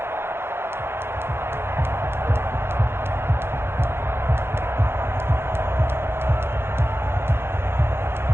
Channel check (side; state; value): left; late; 0.11 ms